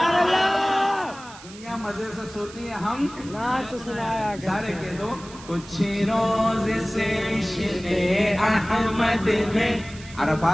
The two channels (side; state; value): right; noise; hiss, 18 dB below the sound